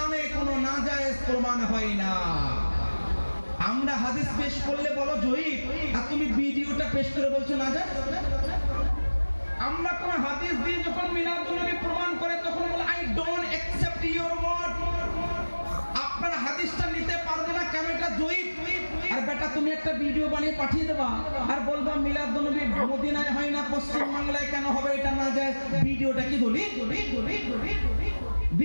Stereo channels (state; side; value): inverted; both; correlation -1.00